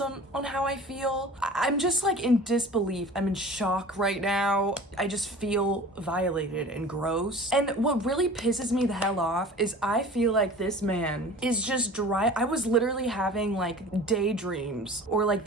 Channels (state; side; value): normal; both; correlation 0.41